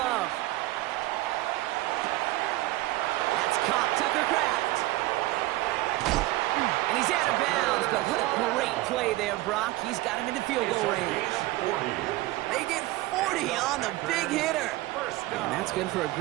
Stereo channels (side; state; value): left; quieter; 18.4 dB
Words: Caught Tucker Kraft. And he's out of bounds, but what a great play there, Brock. He's got him into field goal range. They get 40 on the big hitter. And that's good for a